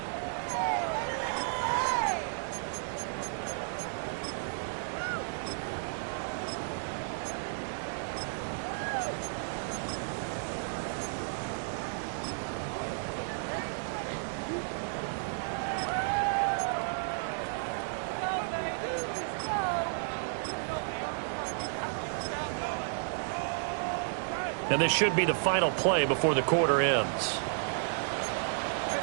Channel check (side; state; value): left; silent; digital silence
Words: And this should be the final play before the quarter ends.